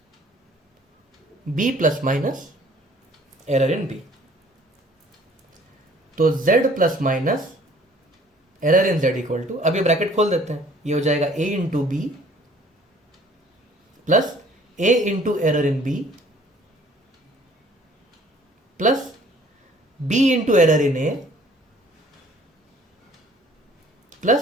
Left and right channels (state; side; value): normal; both; correlation 0.55